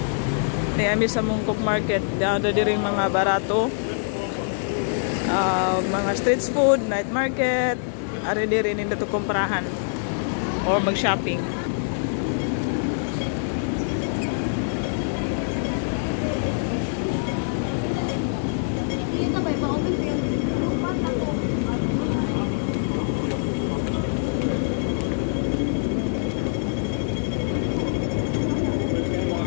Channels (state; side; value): silent; right; 62 dB below the other